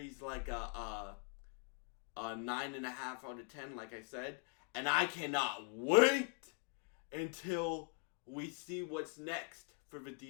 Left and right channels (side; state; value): right; quieter; 35.9 dB